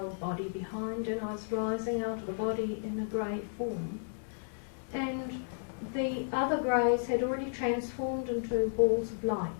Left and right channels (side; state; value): right; silent; 56 dB below the other